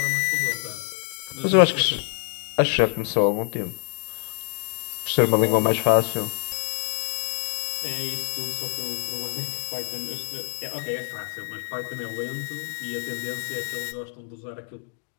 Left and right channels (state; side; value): silent; right; 61 dB below the other